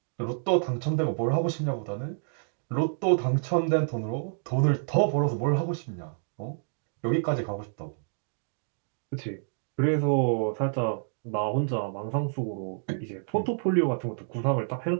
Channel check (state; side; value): silent; left; digital silence